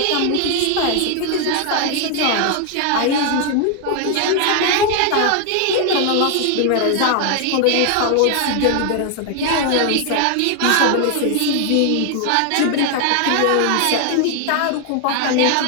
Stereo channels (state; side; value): different; both; correlation 0.00